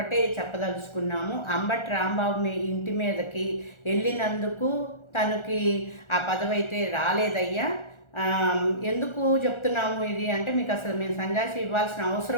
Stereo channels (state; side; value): late; right; 1.4 ms